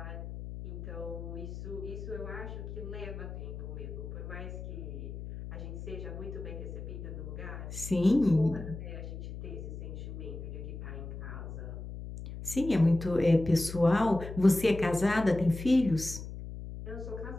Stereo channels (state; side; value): noise; left; hum, 9 dB below the sound